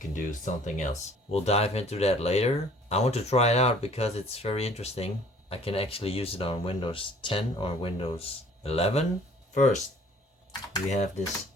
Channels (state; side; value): normal; both; correlation 0.54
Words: do something else. We'll dive into that later. I want to try it out because it's very interesting. I can actually use it on Windows 10 or Windows 11. First, we have this